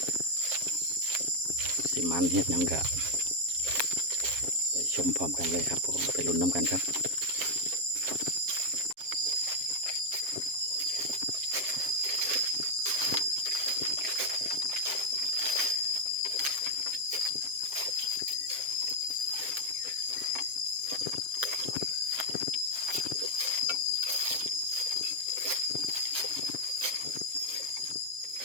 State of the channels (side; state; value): left; late; 7.4 ms